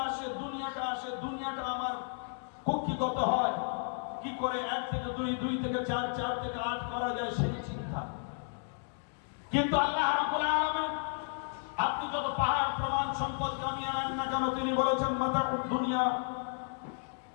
আসে, দুনিয়াটা আসে, দুনিয়াটা আমার কক্ষিগত হয়, কি করে 1 থেকে 2, 2 থেকে 4, 4 থেকে 8 করা যায় সেই চিন্তা। কিন্তু আল্লাহ রাব্বুল আলামিন আপনি যত পাহাড় প্রমাণ সম্পদ কামিয়ে আনেন না কেন, তিনি বলেছেন মাতাউদ দুনিয়া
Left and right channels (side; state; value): right; silent; 56 dB below the other